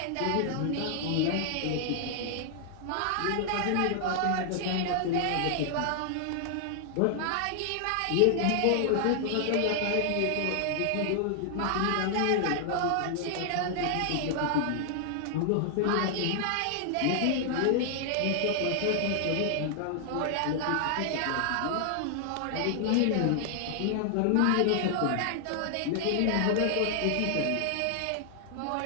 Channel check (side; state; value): both; different; correlation 0.00